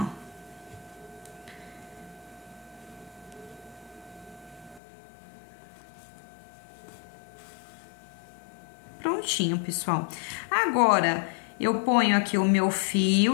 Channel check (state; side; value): drops out; right; at 4.8 s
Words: ó. Prontinho, pessoal. Agora, eu ponho aqui o meu